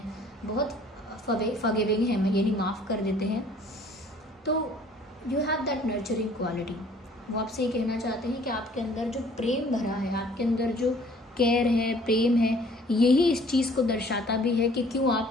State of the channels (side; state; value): both; normal; correlation 0.55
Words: बहुत फॉरगिविंग हैं, यानी माफ़ कर देते हैं। तो you have that nurturing quality. वो आपसे ये कहना चाहते हैं कि आपके अंदर जो प्रेम भरा है, आपके अंदर जो केयर है, प्रेम है, यही इस चीज़ को दर्शाता भी है कि क्यों